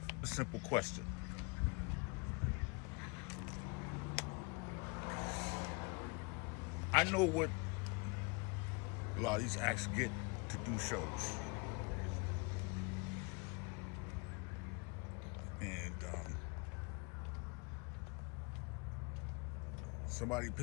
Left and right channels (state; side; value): quieter; right; 29.7 dB